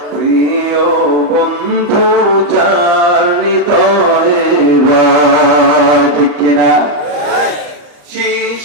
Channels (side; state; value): left; late; 35 ms